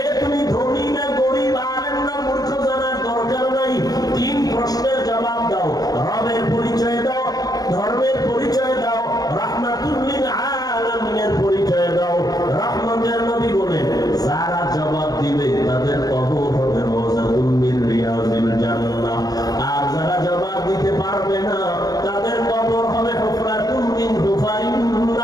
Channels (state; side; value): late; right; 0.18 ms